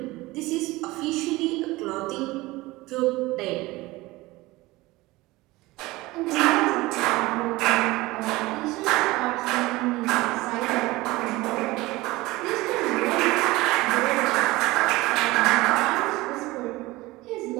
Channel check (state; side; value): quieter; left; 20.2 dB